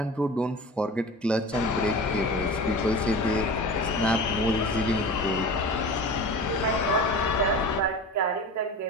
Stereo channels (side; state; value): both; normal; correlation 0.34